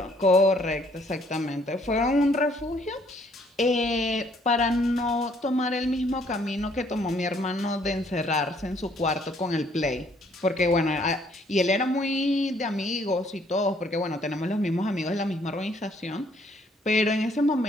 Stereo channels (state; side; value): normal; both; correlation 0.64